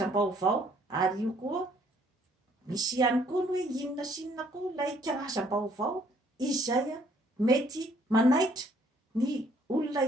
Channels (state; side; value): normal; both; correlation 0.64